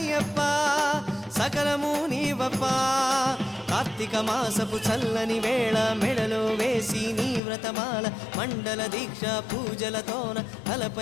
సకలము నీవప్ప కార్తీక మాసపు చల్లని వేళ మెడలో వేసి నీ వ్రతమాల మండల దీక్ష పూజలతోన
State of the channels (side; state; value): right; drops out; at 7.4 s